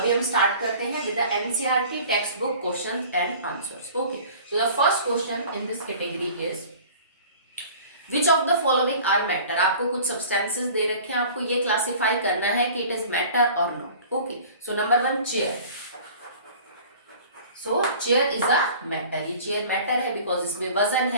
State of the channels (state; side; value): inverted; both; correlation -0.45